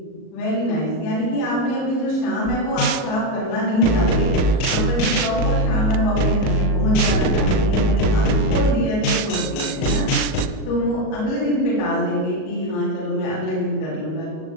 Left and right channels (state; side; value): late; right; 38 ms